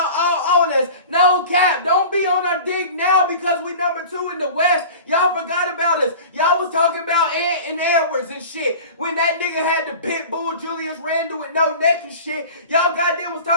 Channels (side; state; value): both; inverted; correlation -0.38